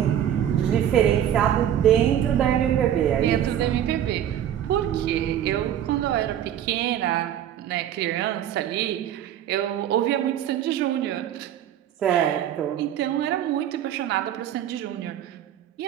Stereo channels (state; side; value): quieter; left; 10.6 dB